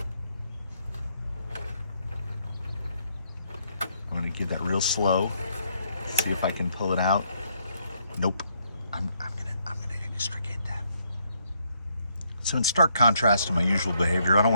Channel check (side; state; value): both; inverted; correlation -0.73